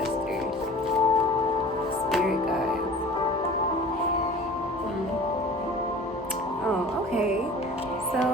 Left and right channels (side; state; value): both; normal; correlation 0.42